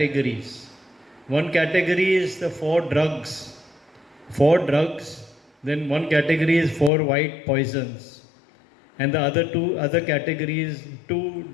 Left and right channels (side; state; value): right; drops out; at 6.9 s